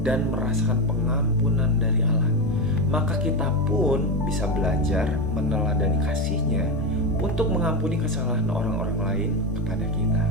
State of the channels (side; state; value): both; normal; correlation 0.14